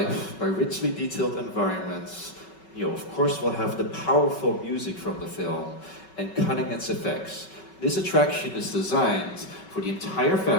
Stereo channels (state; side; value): late; right; 5.3 ms